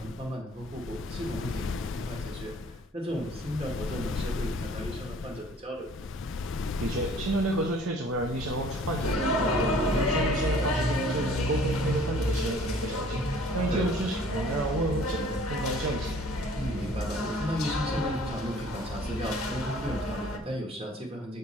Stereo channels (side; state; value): both; normal; correlation 0.53